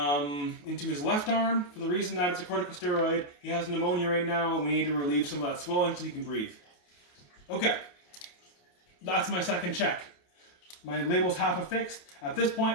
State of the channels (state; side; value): late; right; 28 ms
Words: his left arm for the reason that it's a corticosteroid. He has pneumonia right now, and we need to relieve some of that swelling so he can breathe. Okay, that's my second check. My label's half affixed. At this